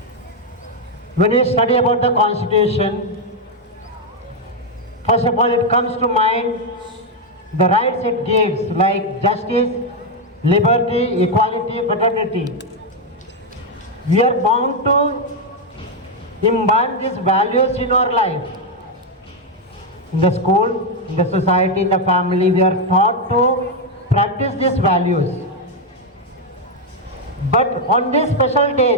When we study about the Constitution, first of all it comes to mind the rights it gives, like justice, liberty, equality, fraternity. We are bound to imbibe these values in our life. In the school, in the society, in the family, we are taught to practice these values. But on this special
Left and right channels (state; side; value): normal; both; correlation 0.03